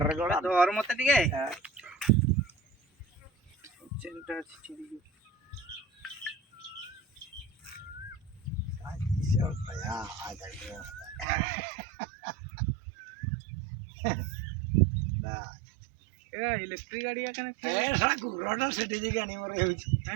করে ধর মতে টিকে চেনটা ছিড়ি भैया आ जाइए এরা ইলেকট্রিক গাড়ি এখানে ऐसा गुरोटा सेठी जी गाड़ी मरे होची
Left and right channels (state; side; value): drops out; left; at 11.2 s